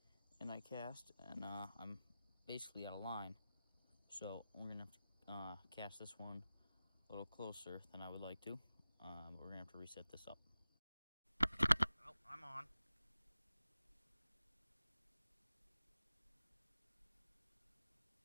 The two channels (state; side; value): inverted; both; correlation -0.95